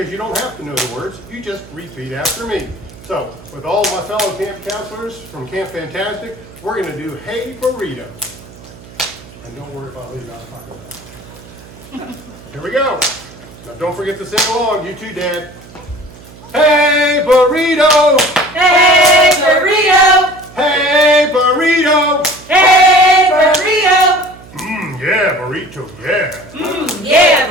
you don't have to know the words, you just repeat after me. So, with all my fellow camp counselors from Camp Fantastic, we're going to do Hey Burrito. And don't worry about leaving out talking about it. Here we go. Now don't forget to sing along, you too, Dad. Hey Burrito! Hey Burrito! Hey Burrito! Hey Burrito! Yeah, burrito, yeah.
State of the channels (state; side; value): noise; right; hum, 20 dB below the sound